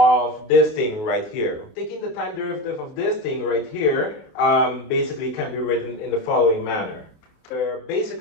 this thing right here. Taking the time derivative of this thing right here basically can be written in the following manner.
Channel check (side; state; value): right; late; 28 ms